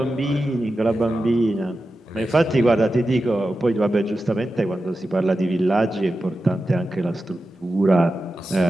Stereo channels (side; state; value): both; normal; correlation 0.92